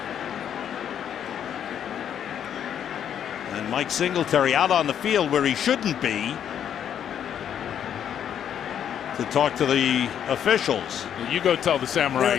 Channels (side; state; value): right; quieter; 9.2 dB